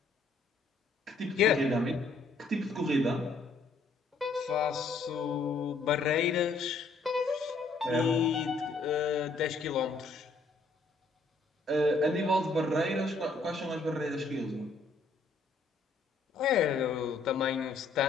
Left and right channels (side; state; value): right; quieter; 3.7 dB